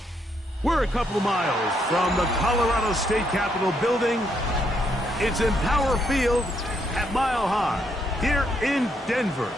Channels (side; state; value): both; normal; correlation 0.75